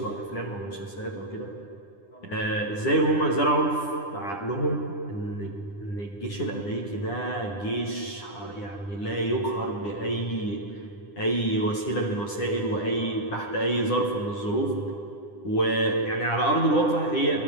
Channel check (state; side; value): late; right; 9.9 ms